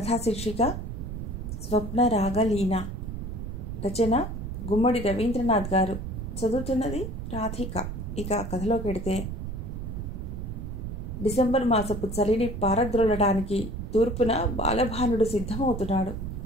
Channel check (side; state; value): right; noise; rumble, 6 dB below the sound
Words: శీర్షిక స్వప్న రాగలీన. రచన గుమ్మడి రవీంద్రనాథ్ గారు. చదువుతున్నది రాధిక. ఇక కథలోకి వెడితే, డిసెంబర్ మాసపు చలిని పారద్రోలడానికి తూర్పున బాలభానుడు సిద్ధమవుతున్నాడు.